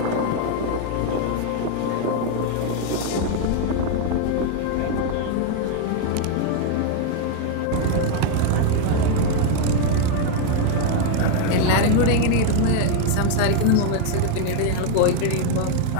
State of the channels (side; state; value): both; different; correlation 0.00